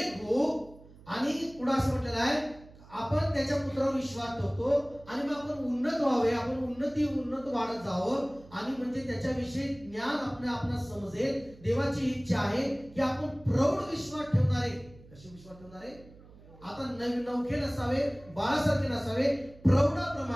हो. आणि पुढे असं म्हटलेलं आहे आपण त्याच्या पुत्रावर विश्वास ठेवतो आणि मग आपण उन्नत व्हावे, आपण उन्नत वाढत जावं आणि म्हणजे त्याच्याविषयी ज्ञान आपल्याला समजेल. देवाची इच्छा आहे की आपण प्रौढ विश्वास ठेवणारे. कसे विश्वास ठेवणारे? आता नवखे नसावे, बाळासारखे नसावे,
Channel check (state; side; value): noise; right; hum, 22 dB below the sound